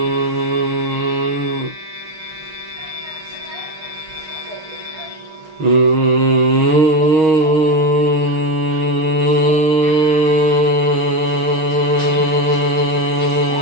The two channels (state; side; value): late; left; 6.4 ms